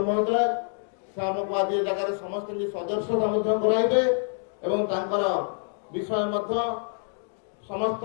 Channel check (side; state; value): right; silent; 60 dB below the other